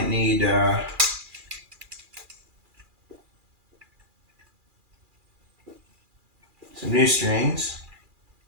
need some new strings,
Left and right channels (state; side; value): late; left; 2.4 ms